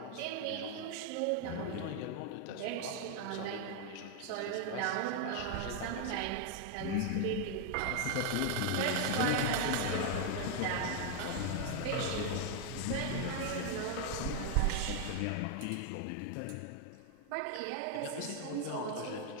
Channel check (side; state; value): both; different; correlation 0.01